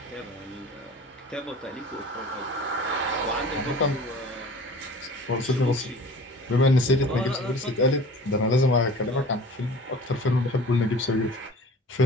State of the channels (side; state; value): both; normal; correlation 0.43